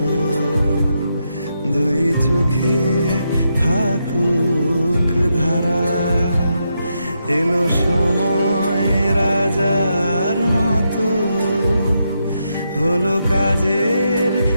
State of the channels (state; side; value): inverted; both; correlation -0.82